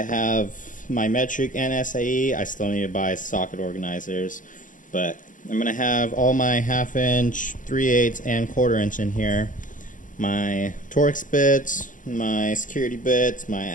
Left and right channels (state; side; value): late; right; 0.38 ms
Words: have my metric and SAE. I still need to buy socket organizers, but I'm going to have all my 1/2 inch, 3/8, and 1/4 inch in here. My Torx bits, my security bits, my